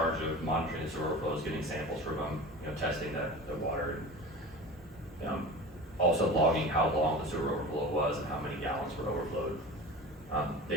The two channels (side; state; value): both; normal; correlation 0.34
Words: of monitoring the sewer overflows, getting samples from them, testing the water, and also logging how long the sewer overflow was and how many gallons were overflowed.